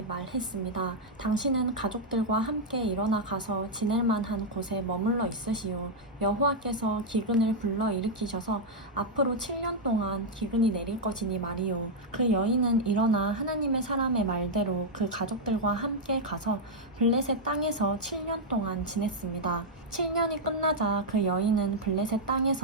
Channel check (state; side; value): normal; both; correlation -0.02